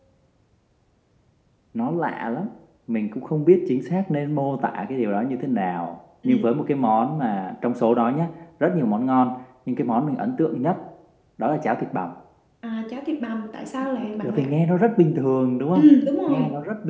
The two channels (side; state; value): both; identical; correlation 1.00